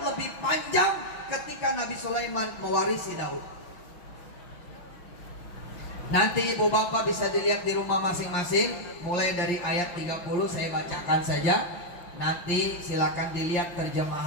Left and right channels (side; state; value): right; late; 5.7 ms